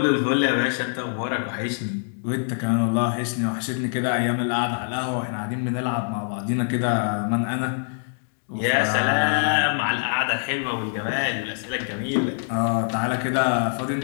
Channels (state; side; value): silent; right; digital silence